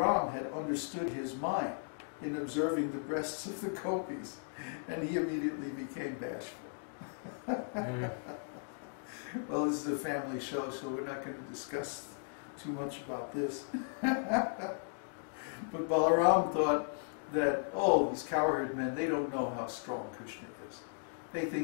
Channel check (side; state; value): right; silent; digital silence